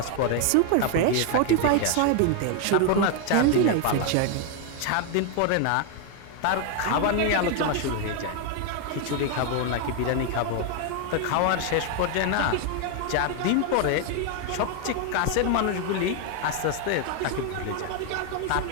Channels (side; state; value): both; different; correlation 0.01